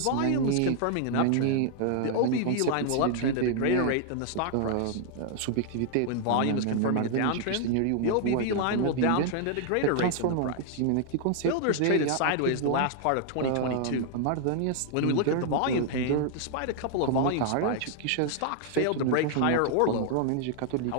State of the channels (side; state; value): both; different; correlation 0.00